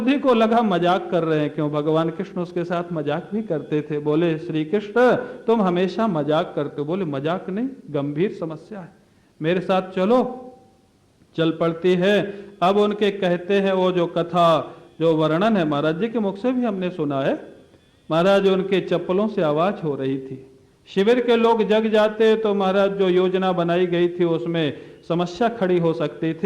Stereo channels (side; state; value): both; identical; correlation 1.00